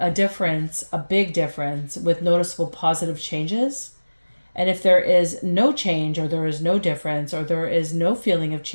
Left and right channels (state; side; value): inverted; both; correlation -1.00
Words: difference, a big difference, with noticeable positive changes. And if there is no change, or there is no difference, or there is no feeling of